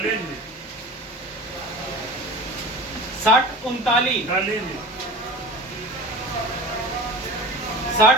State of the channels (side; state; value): both; normal; correlation 0.36